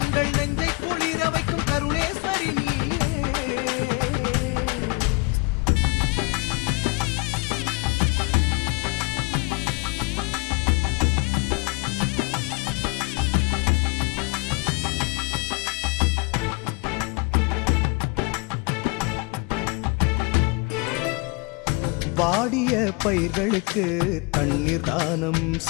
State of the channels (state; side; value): quieter; right; 28.2 dB